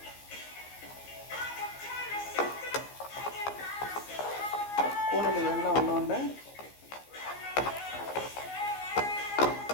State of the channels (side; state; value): right; late; 15 ms